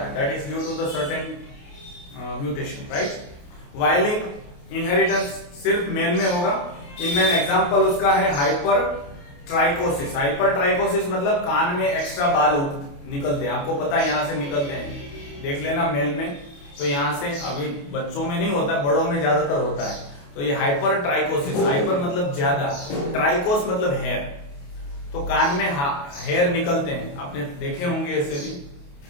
है, that is due to the certain mutation, right. Y-linked inheritance सिर्फ मेल में होगा. इनमें एग्जांपल उसका है हाइपर ट्राइकोसिस. हाइपर ट्राइकोसिस मतलब कान में एक्स्ट्रा बाल निकलते हैं. आपको पता है यहां से निकलते हैं, देख लेना मेल में. तो यहां से, अभी बच्चों में नहीं होता, बड़ों में ज्यादातर होता है. तो ये हाइपर ट्राइकोसिस, हाइपर मतलब ज्यादा, ट्राइकोस मतलब हेयर. तो कान में हेयर निकलते हैं, आपने देखे होंगे ऐसे भी.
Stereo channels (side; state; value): right; late; 28 ms